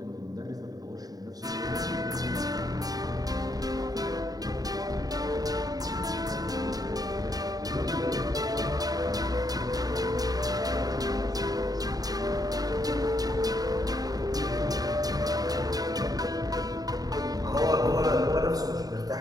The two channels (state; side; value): late; left; 0.18 ms